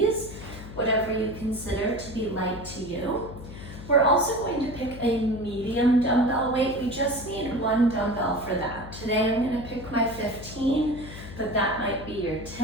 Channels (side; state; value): left; noise; hum, 12 dB below the sound